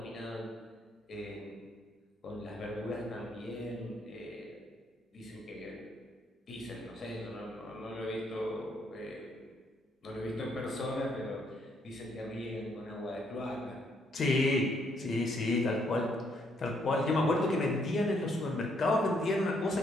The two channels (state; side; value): normal; both; correlation 0.71